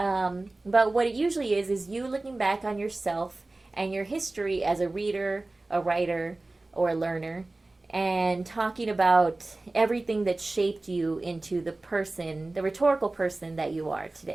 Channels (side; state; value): left; quieter; 3.0 dB